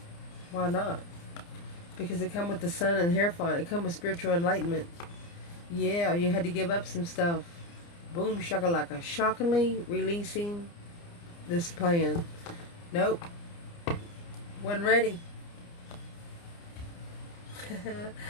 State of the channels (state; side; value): late; right; 29 ms